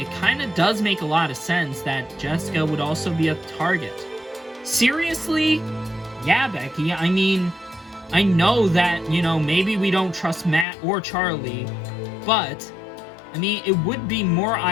kind of does make a lot of sense that Jessica would also be a target. Seriously? Yeah, Becky, I mean, I know that, you know, maybe we don't trust Matt or Charlie, but, I mean, it would be more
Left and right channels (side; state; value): right; drops out; at 10.7 s